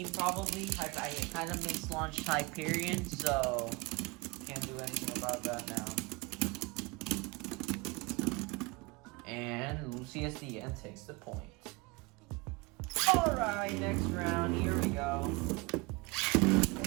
probably. I kind of mislaunched Hyperion, so can't do anything about that now. And Lucius the end takes the point. Alright, next round, here we go.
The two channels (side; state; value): left; quieter; 25.7 dB